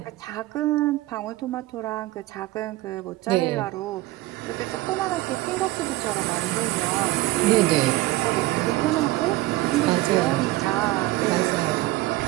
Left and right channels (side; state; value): left; quieter; 18.3 dB